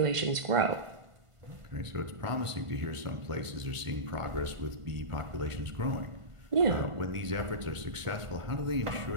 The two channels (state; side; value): late; left; 1.5 ms